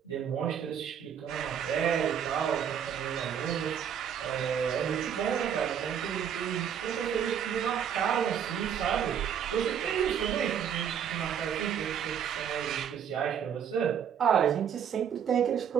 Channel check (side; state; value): left; quieter; 8.5 dB